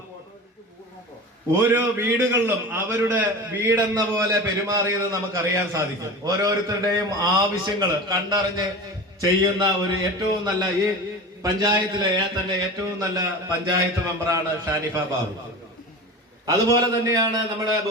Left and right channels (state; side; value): normal; both; correlation 0.31